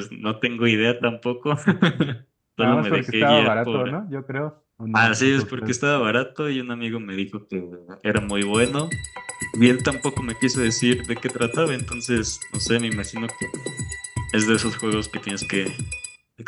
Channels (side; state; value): both; identical; correlation 1.00